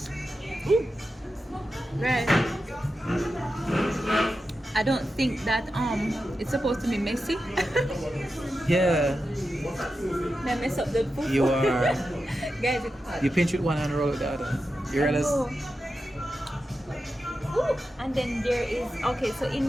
red I don't think that it's supposed to be messy. Yeah, May I mess up the food? you are. Guys, it's hot. You pinch with one hand and roll with the other. You realize? Oh. Ooh, and then there is okay. So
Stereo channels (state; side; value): normal; both; correlation 0.90